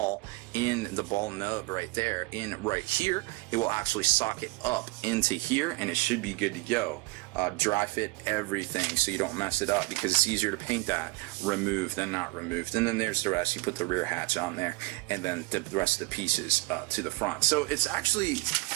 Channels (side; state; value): left; quieter; 24.5 dB